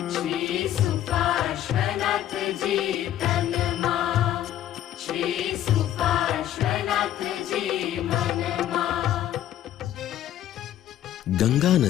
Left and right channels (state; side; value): quieter; right; 12.0 dB